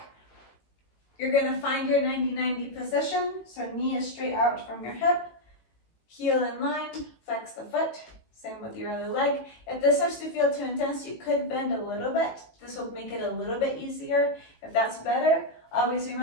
You're going to find your 90-90 position. So knee is straight out from your hip, heel in line, flex the foot. Same with your other leg. If this starts to feel too intense, you could bend a little bit. This will make it a little bit easier. If that's better, always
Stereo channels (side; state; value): right; late; 18 ms